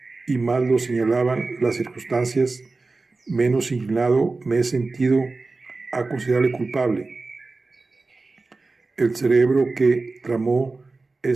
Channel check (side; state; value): left; quieter; 3.6 dB